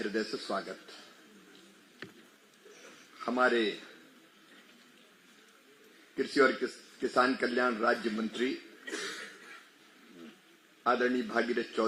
से स्वागत। हमारे कृषि और किसान कल्याण राज्य मंत्री आदरणीय भागीरथ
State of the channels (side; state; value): both; identical; correlation 1.00